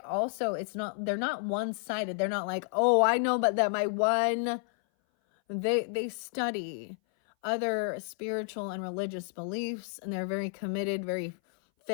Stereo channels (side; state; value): right; silent; 57 dB below the other